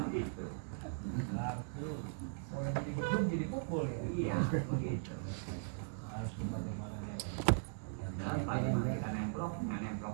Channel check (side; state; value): left; silent; digital silence